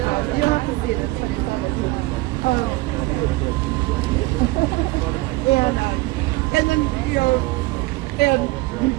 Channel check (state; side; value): quieter; left; 20.7 dB